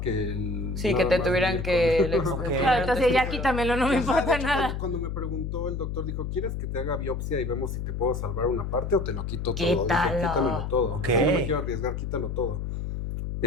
el... Sí, nada que te más tuvieran venir que... con- Ok. Claro, entonces ya quítamelo, no me Ajá, importa de hecho, nada. Cuando me preguntó el doctor, dijo, ¿quieres que te haga biopsia y vemos si te puedo salvar una parte o te lo quito todo? Dije, Quítalo. quítamelo todo. Ok. No me quiero arriesgar, quítalo todo.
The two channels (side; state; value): left; noise; hum, 4 dB below the sound